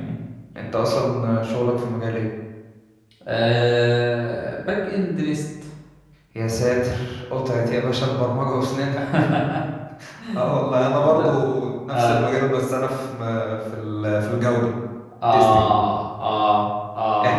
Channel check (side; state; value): both; identical; correlation 1.00